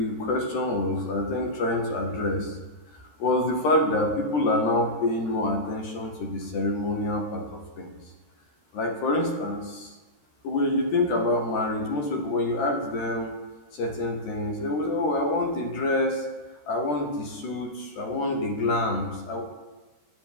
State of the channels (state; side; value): late; right; 13 ms